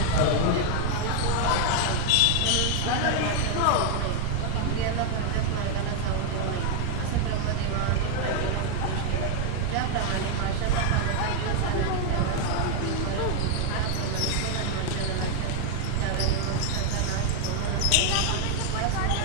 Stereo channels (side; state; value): both; different; correlation 0.00